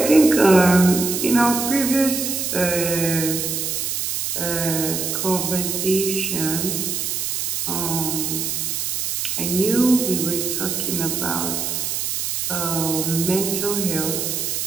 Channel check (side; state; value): right; noise; hiss, 1 dB below the sound